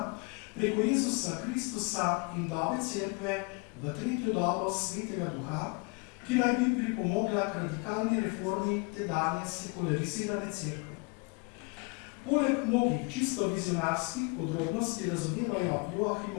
preko Jezusa Kristusa in dobe cerkve v 3. dobo Svetega Duha, ki naj bi pripomogla k radikalni reformi tedanje sekularizirane cerkve. Poleg mnogih čisto vizionarskih podrobnosti razodevajo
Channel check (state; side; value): quieter; right; 30.6 dB